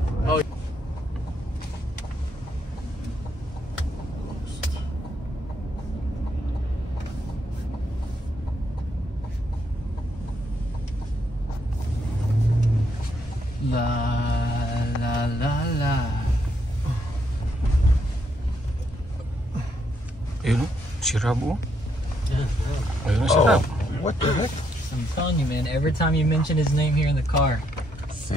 Oh. La. Ayun, si Rabo. Ayun, si Rabo. What the heck? I'm telling you, man. Every time you mention his name here in the car,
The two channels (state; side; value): normal; both; correlation 0.75